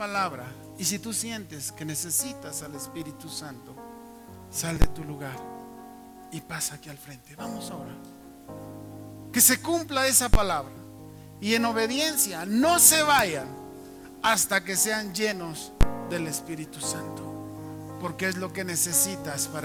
y si tú sientes que necesitas al Espíritu Santo, sal de tu lugar y pasa aquí al frente. Vamos a orar. Que se cumpla esa palabra. Y en obediencia no se vayan hasta que sean llenos del Espíritu Santo. Porque es lo que necesitas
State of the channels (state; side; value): identical; both; correlation 1.00